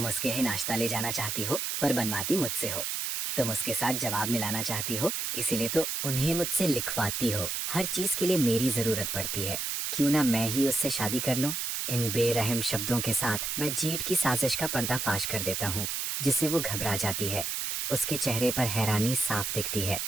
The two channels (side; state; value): right; noise; hiss, 2 dB below the sound